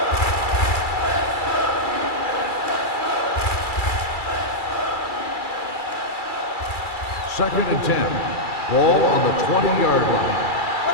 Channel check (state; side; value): late; right; 2.3 ms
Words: Second and 10. Ball on the 20-yard line.